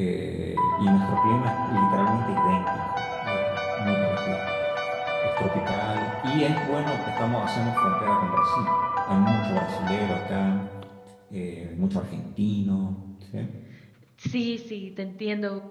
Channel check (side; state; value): both; identical; correlation 1.00